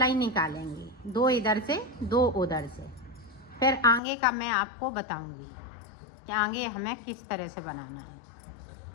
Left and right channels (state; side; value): drops out; right; at 4.0 s